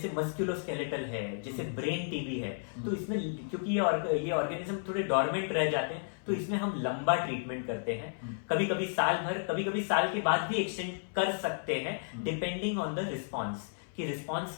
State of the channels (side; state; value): right; silent; 56 dB below the other